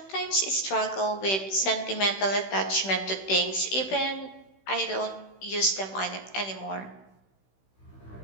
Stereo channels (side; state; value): right; late; 16 ms